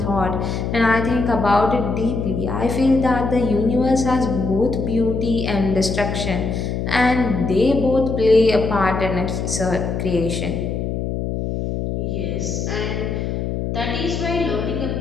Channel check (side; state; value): left; noise; hum, 2 dB below the sound